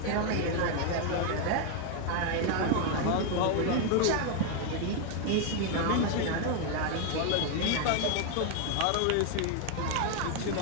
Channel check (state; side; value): different; both; correlation 0.01